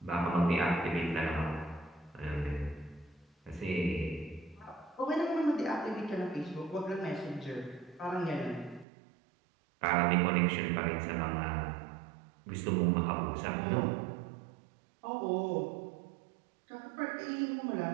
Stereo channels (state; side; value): drops out; left; at 8.8 s